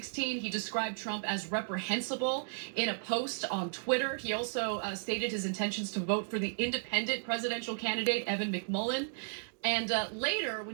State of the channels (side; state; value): left; silent; digital silence